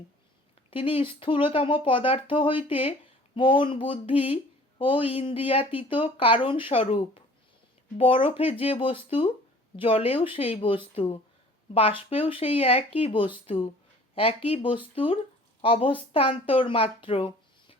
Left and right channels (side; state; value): both; normal; correlation 0.49